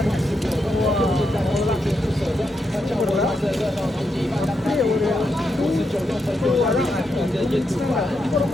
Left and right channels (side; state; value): both; normal; correlation 0.83